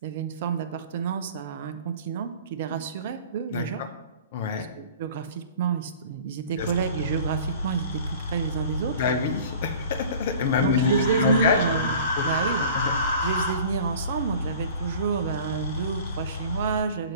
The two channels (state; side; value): inverted; both; correlation -0.44